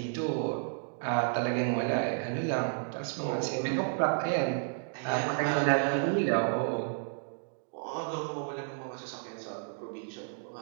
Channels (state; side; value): silent; left; digital silence